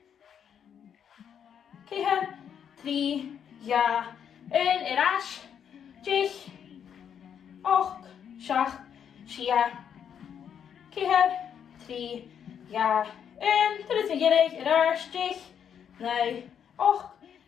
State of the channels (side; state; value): right; quieter; 8.3 dB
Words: keher, 3, ja, 1, raas. Jich, och, shach, shia, keher, 3, ja, 1, dat is een gelijk, raars, jich, nee, och,